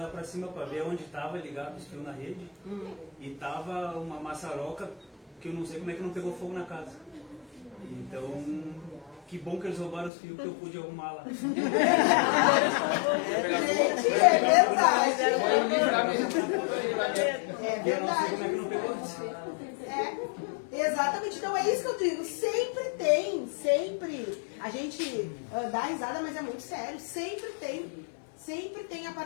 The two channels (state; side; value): drops out; right; at 10.1 s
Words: para cima para ver onde estava ligado os fios na rede. E tava uma maçaroca que eu não sei como é que não pegou fogo na casa. Então, que bom que eles roubaram os fios que eu pude arrumar lá. Gente, é verdade. É verdade. Como é que não pegou? Exatamente, então é isso que eu digo, sempre tem, sempre, a gente dá risada, mas é muito sério, sempre tem a